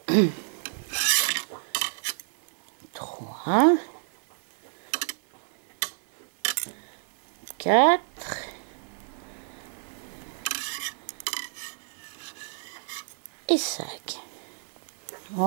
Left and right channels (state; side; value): silent; left; digital silence